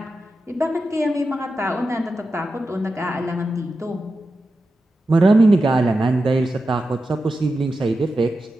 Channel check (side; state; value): both; normal; correlation 0.91